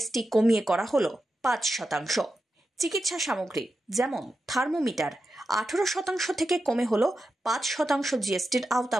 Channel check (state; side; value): normal; both; correlation 0.90